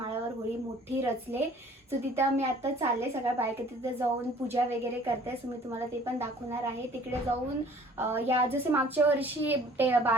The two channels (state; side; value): normal; both; correlation 0.53